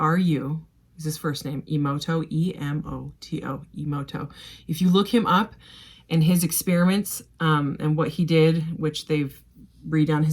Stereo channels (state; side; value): identical; both; correlation 1.00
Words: Is his first name, Emoto, E-M-O-T-O, Emoto. If you look him up, and his experiments, and what he did, which they've redone